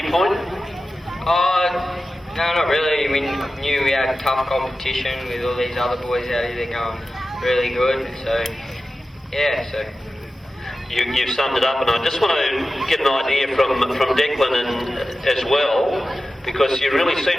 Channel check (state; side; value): normal; both; correlation 0.94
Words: point? No, not really. We knew we had tough competition with all these other boys out here. They're going really good, so yeah. So you've summed it up, and I just want to get an idea from Declan and as well, because you really